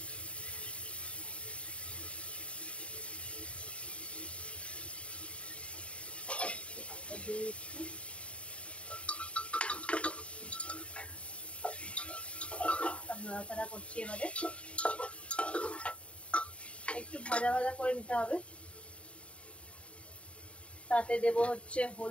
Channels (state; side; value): late; right; 0.061 ms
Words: নাড়াচাড়া করছি। এবারে একটু ভাজা ভাজা করে নিতে হবে। তাতে দেব হচ্ছে